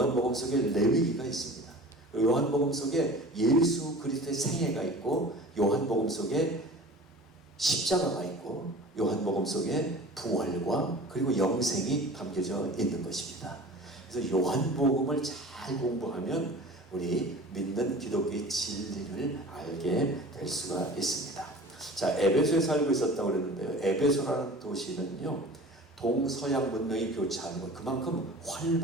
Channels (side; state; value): both; normal; correlation 0.40